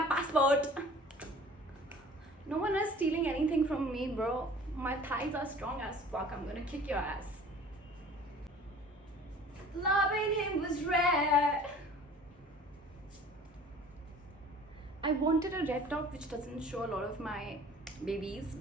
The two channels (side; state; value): both; normal; correlation 0.47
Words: passport. No one is stealing anything from me, bro. My thighs are strong as fuck. I'm gonna kick your ass. Loving him was rare. I wanted a red top which doesn't show a lot of my babies,